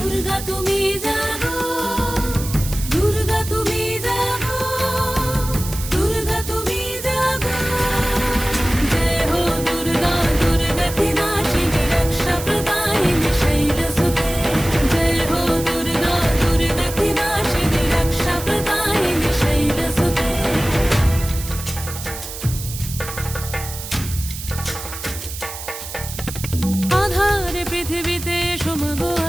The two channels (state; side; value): noise; right; hiss, 10 dB below the sound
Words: তুমি জাগো, দুর্গা তুমি জাগো, দুর্গা তুমি জাগো। জয় হো দুর্গা দুর্গতি নাশিনী রক্ষা প্রদায়িনী শৈলসুতে। জয় হো দুর্গা দুর্গতি নাশিনী রক্ষা প্রদায়িনী শৈলসুতে। আধারে পৃথিবীতে এসো মাগো